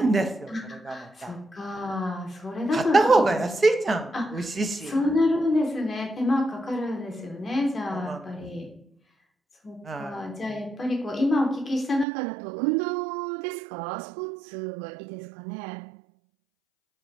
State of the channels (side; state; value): left; drops out; at 12.1 s